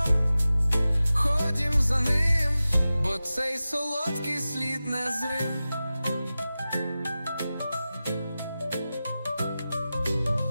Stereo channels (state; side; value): inverted; both; correlation -0.95